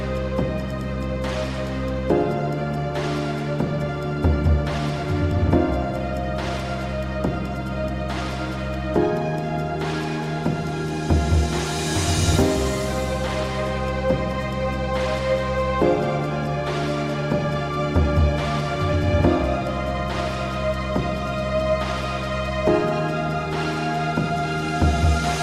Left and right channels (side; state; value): both; identical; correlation 1.00